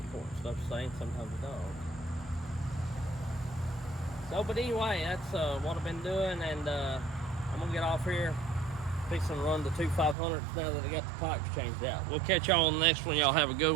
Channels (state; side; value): drops out; left; at 10.2 s